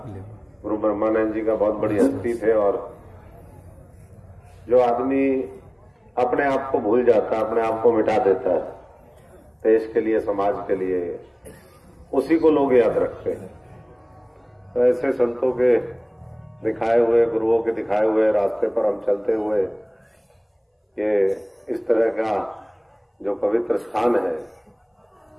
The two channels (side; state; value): both; identical; correlation 1.00